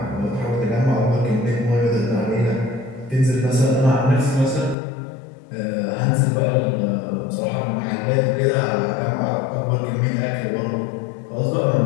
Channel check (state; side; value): drops out; right; at 4.8 s